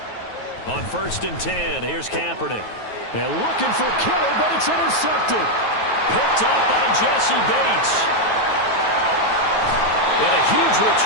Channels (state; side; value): late; right; 9.3 ms